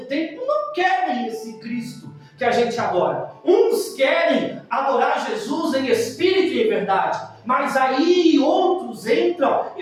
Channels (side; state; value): both; identical; correlation 1.00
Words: tempo não querem esse Cristo. que a gente adora. Uns querem adorar Jesus em espírito e em verdade, mas aí outros entram